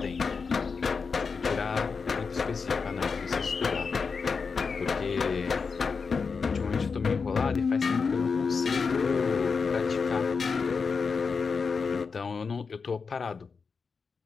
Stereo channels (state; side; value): quieter; right; 5.1 dB